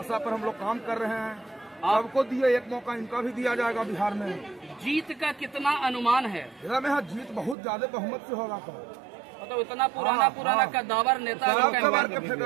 पर हम लोग काम कर रहे हैं। सबको दिए एक मौका, इनका भी दिया जाएगा बिहार में। जीत का कितना अनुमान है? में हाँ, जीत बहुत ज्यादा बहुमत से होगा। मतलब इतना पुराना कद्दावर नेता के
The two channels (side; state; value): left; drops out; at 7.6 s